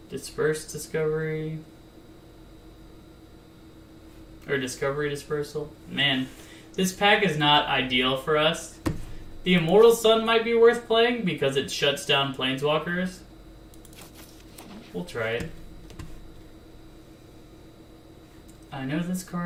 Disperse Discovery. Or Discovery Dispersal. Man, this pack is not ideal for us. The Immortal Sun might be worth playing because it shuts down Planeswalkers. We'll try it. I know this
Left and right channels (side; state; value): both; identical; correlation 1.00